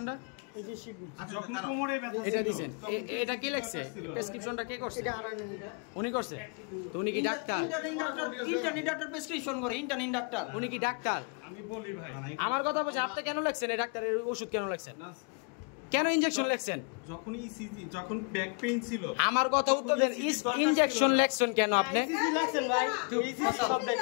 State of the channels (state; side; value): quieter; right; 36.6 dB